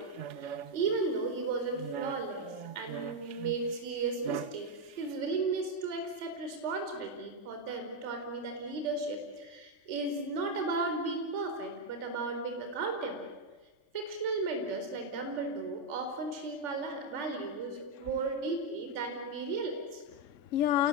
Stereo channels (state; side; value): late; right; 3.4 ms